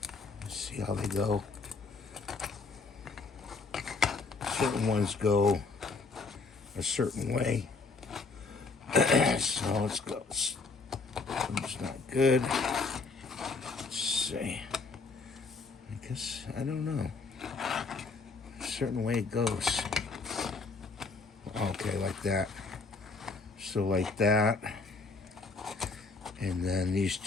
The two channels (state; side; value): quieter; right; 4.1 dB